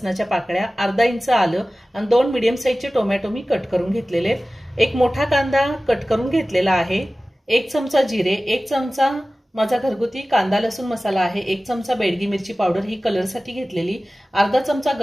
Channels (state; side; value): normal; both; correlation 0.97